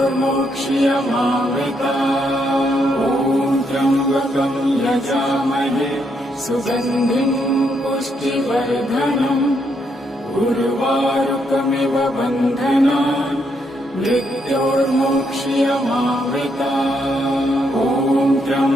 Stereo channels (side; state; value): both; normal; correlation 0.76